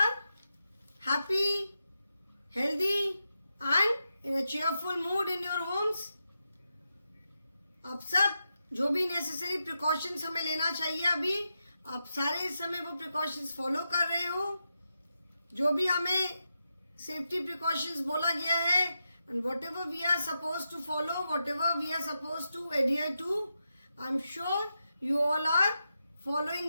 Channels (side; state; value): both; inverted; correlation -0.88